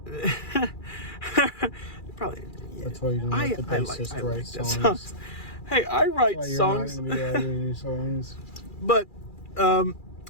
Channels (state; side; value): late; right; 2.4 ms